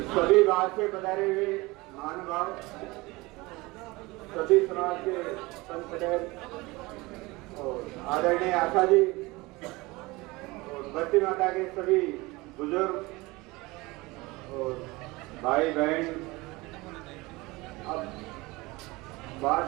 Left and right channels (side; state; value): left; quieter; 22.4 dB